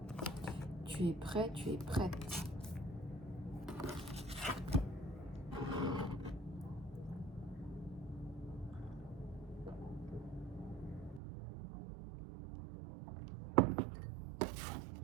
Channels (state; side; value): drops out; left; at 11.2 s